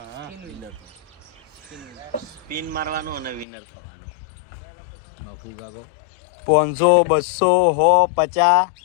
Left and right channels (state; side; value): drops out; right; at 3.5 s